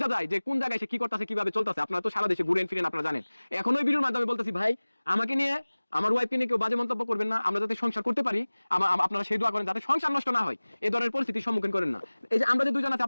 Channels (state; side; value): inverted; both; correlation -1.00